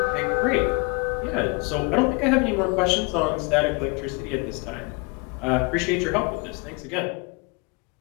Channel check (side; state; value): right; quieter; 29.2 dB